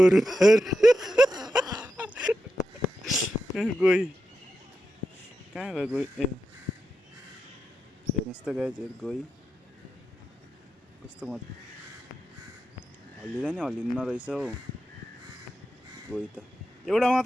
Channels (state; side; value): normal; both; correlation 0.88